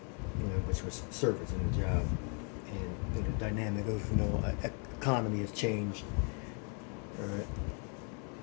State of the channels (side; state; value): right; quieter; 39.0 dB